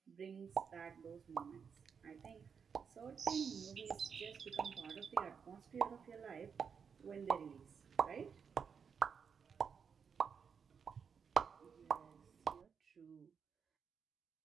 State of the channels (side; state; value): left; quieter; 6.5 dB